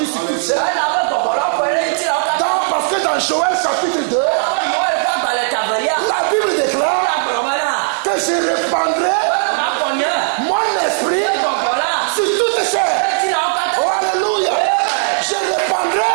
sur toutes ces. Elabe gbɔgbɔ la ƒe ɖe ŋuti la wo katã. Parce que dans Joël chapitre 2, Elabe Yoel ƒe agbalẽ tavelia. la Bible déclare La gblɔ be na. que je répandrai Makɔ nye. mon esprit Gbɔgbɔ la. sur toutes ces. Ŋuti la wo katã. Oh, alléluia. Je répandrai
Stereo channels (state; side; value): silent; left; 64 dB below the other